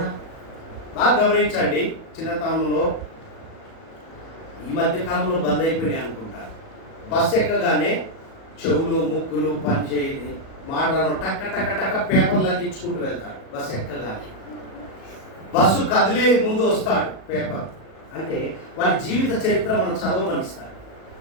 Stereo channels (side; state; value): right; late; 37 ms